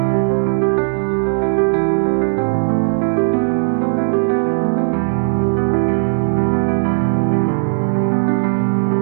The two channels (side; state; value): left; silent; digital silence